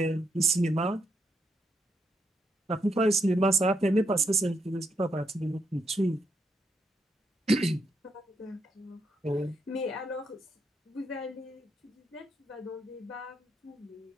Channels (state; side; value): normal; both; correlation 0.78